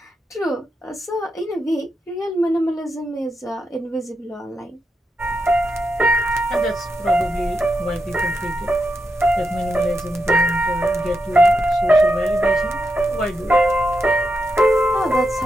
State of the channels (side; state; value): both; normal; correlation 0.85